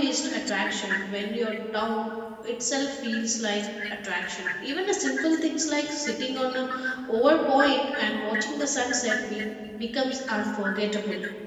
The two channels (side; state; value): both; identical; correlation 1.00